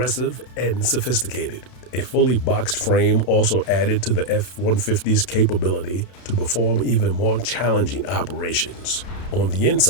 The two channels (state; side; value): late; right; 32 ms